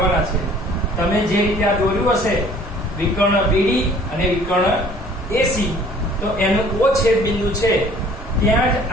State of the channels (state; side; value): normal; both; correlation 0.53